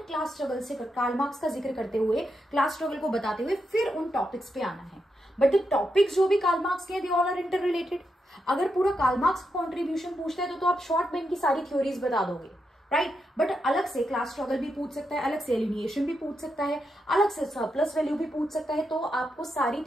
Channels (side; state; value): both; normal; correlation 0.84